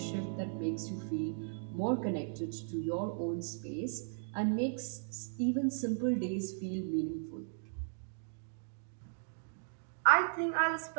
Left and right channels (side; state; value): left; silent; digital silence